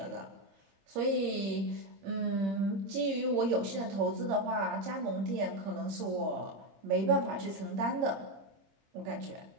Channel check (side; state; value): left; late; 26 ms